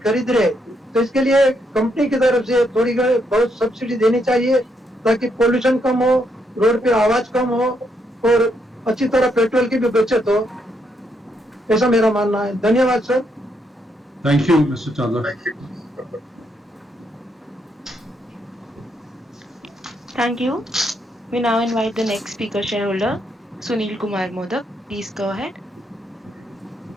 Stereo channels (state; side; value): normal; both; correlation 0.76